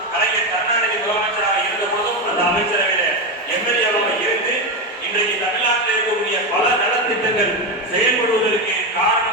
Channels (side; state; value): both; normal; correlation 0.13